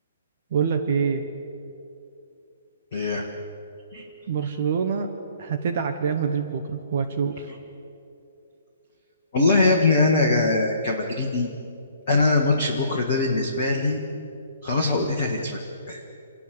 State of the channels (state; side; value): inverted; both; correlation -0.58